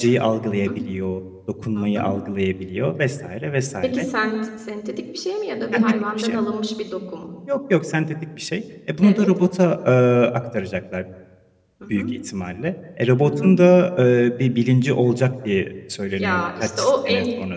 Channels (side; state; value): both; identical; correlation 1.00